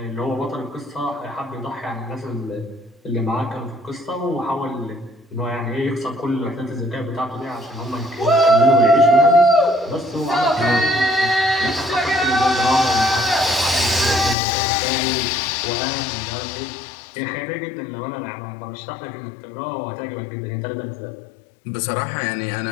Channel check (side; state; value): right; drops out; at 14.4 s